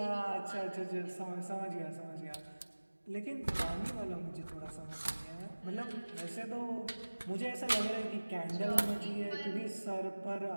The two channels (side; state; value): both; inverted; correlation -1.00